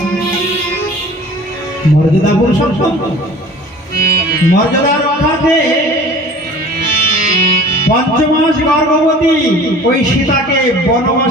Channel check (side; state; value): both; normal; correlation 0.44